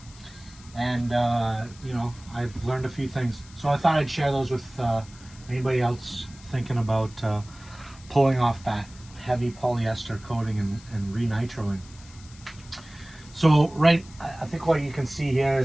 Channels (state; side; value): noise; left; hiss, 22 dB below the sound